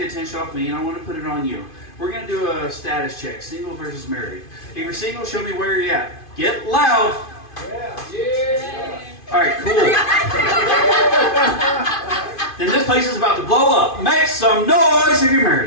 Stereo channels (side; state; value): right; late; 2.5 ms